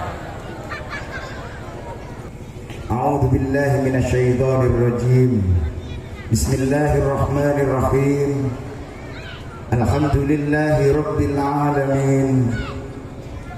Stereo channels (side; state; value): both; identical; correlation 1.00